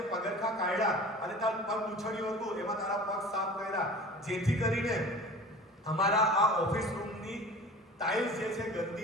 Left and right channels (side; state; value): both; normal; correlation 0.40